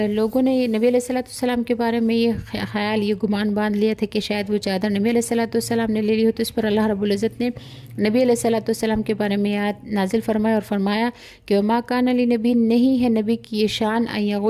لوگوں نے نبی علیہ الصلوۃ والسلام کے بارے میں یہ خیال، یہ گمان باندھ لیا تھا کہ شاید وہ چادر نبی علیہ الصلوۃ والسلام نے لے لی ہو، تو اس پر اللہ رب العزت نے نبی علیہ الصلوۃ والسلام کے بارے میں آیت نازل فرمایا اور فرمایا کہ وما کان لنبی، نہیں ہے نبی کی یہ شان، ان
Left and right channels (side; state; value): both; identical; correlation 1.00